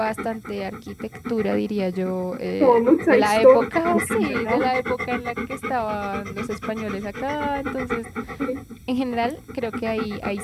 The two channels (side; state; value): both; identical; correlation 1.00